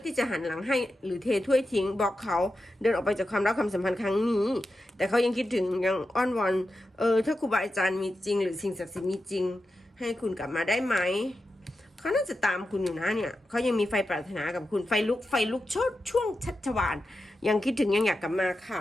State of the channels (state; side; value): normal; both; correlation 0.90